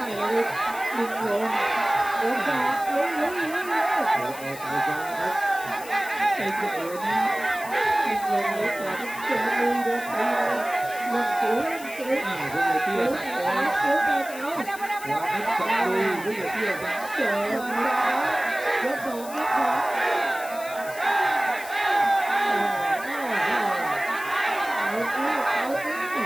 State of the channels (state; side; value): noise; left; hiss, 15 dB below the sound